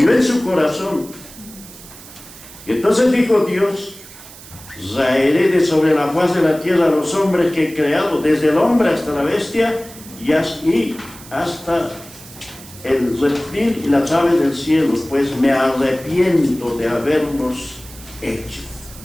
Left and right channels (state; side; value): noise; right; hiss, 18 dB below the sound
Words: en su corazón. Y entonces dijo Dios: raeré de sobre la faz de la tierra a los hombres que he creado, desde el hombre hasta la bestia y hasta el reptil y las aves del cielo, pues me arrepiento de haberlos hecho.